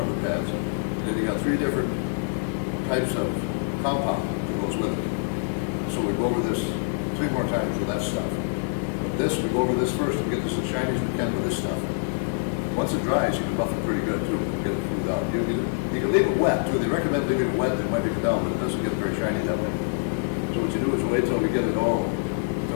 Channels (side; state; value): right; silent; digital silence